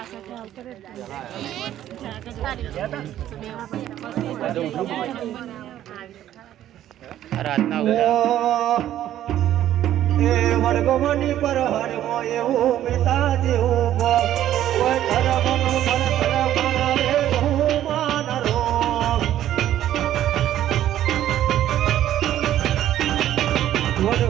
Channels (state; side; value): quieter; left; 12.1 dB